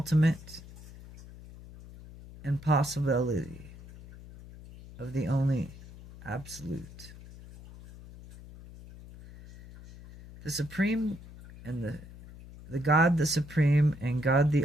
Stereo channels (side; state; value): left; noise; hum, 17 dB below the sound